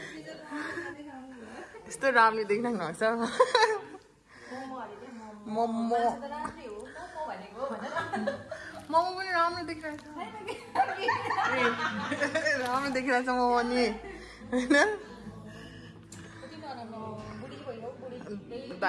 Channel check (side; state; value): both; identical; correlation 1.00